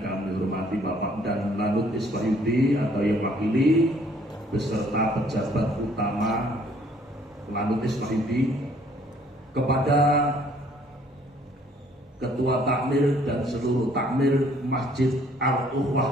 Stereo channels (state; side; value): normal; both; correlation 0.61